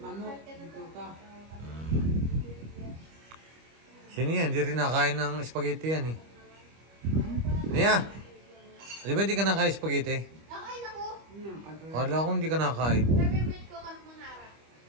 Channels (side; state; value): left; late; 25 ms